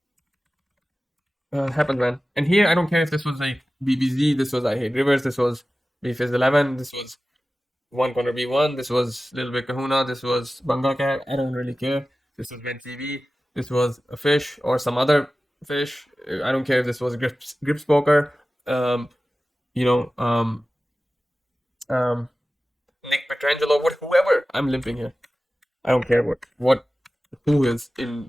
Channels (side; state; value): both; normal; correlation 0.96